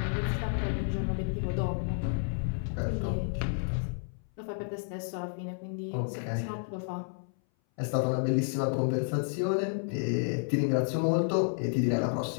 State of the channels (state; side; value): silent; right; 57 dB below the other